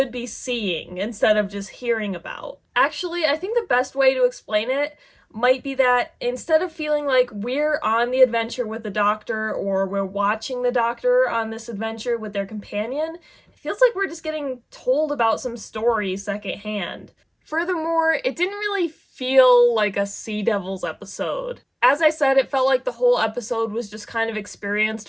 be seeing, instead of just hearing about. Actually, I think the best way to explain it might be that instead of feeling like we're on the adventure with the doctor or we're watching the doctor on this adventure with their companion, it feels like we're just getting told about some story secondhand. Furthermore, it didn't really feel like a Sea Devils episode. As I said, it felt like the whole episode was just kind of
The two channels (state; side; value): identical; both; correlation 1.00